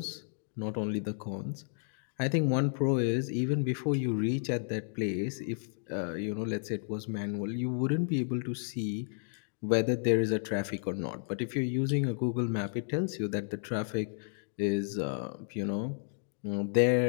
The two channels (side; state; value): right; silent; digital silence